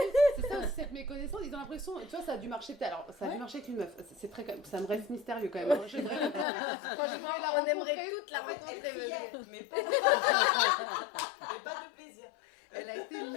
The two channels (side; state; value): right; drops out; at 6.5 s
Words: c'est ça aussi cette méconnaissance, ils ont l'impression, tu vois, ça a dû marcher peut-être. Alors ça a dû marcher avec une meuf, c'est très, ça me reste mystérieux quand même. Hein. Franchement, on aimerait toute la Elle rencontrer. criait, mais pas de plaisir. Elle a été